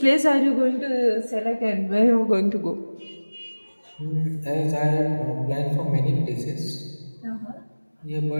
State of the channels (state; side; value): inverted; both; correlation -1.00